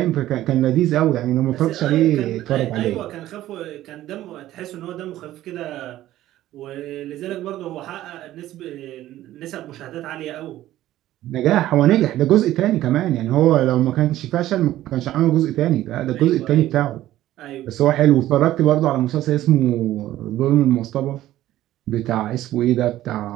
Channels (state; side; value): quieter; left; 14.2 dB